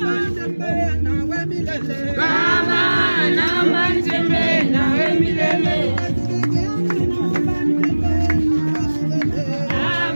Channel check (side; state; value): both; inverted; correlation -1.00